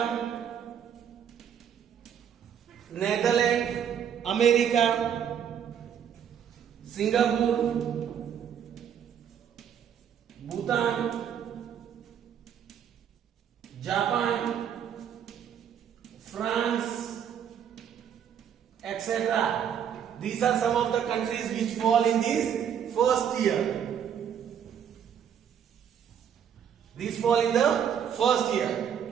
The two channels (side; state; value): left; quieter; 8.5 dB